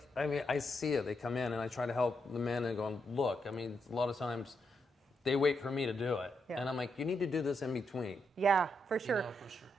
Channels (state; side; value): normal; both; correlation 0.81